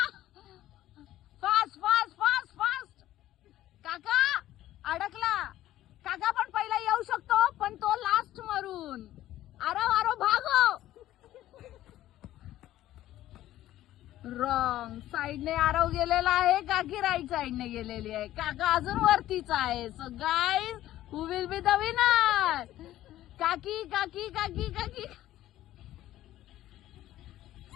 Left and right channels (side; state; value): right; quieter; 14.0 dB